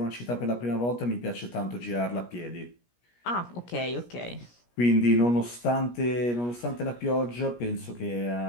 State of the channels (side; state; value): right; late; 17 ms